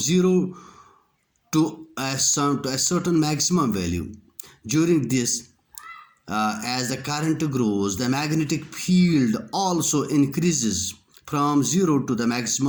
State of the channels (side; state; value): both; identical; correlation 1.00